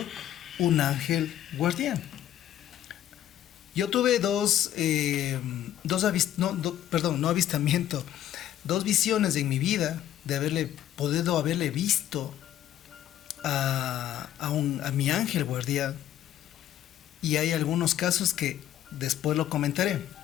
un ángel guardián. Yo tuve dos visiones en mi vida de haberle visto a mi ángel guardián, y hay algunos casos que después lo comentaré.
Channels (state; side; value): quieter; right; 11.8 dB